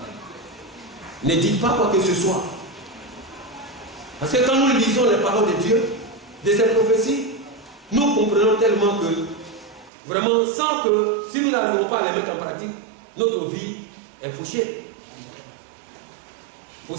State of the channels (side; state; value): left; drops out; at 9.9 s